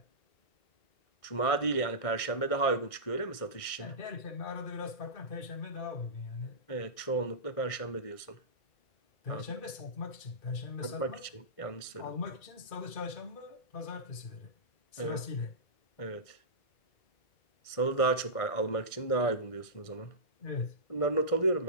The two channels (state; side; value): late; right; 1.6 ms